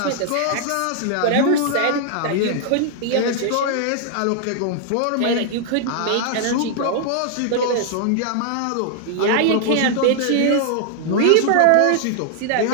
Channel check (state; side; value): different; both; correlation 0.00